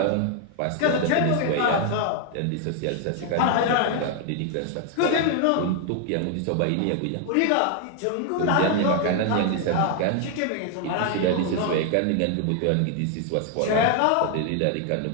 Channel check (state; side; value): different; both; correlation 0.00